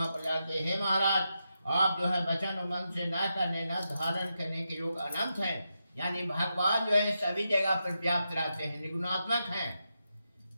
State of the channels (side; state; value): both; inverted; correlation -0.86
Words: पर जाके, हे महाराज, आप जो है वचन और मन से न करने न धारण करने के योग अनंत है। यानी भगवान जो है सभी जगह पर व्याप्त रहते हैं, निर्गुणात्मक हैं,